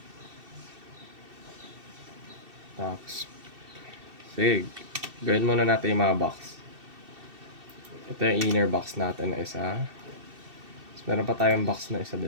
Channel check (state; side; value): late; left; 2.7 ms